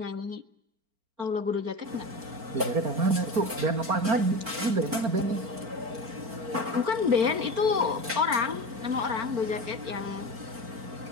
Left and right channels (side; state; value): left; late; 4.4 ms